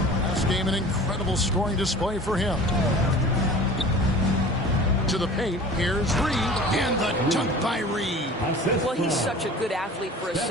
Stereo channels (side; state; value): both; normal; correlation 0.41